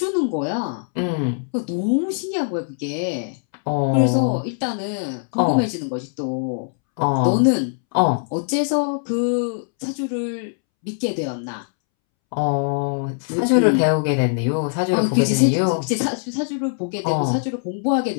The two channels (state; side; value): silent; right; 64 dB below the other